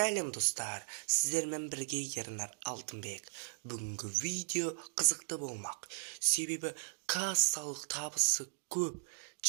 достар, сіздермен бірге Ернар Алтынбек. Бүгінгі видео қызықты болмақ. Себебі кассалық табысы көп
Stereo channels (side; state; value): left; silent; digital silence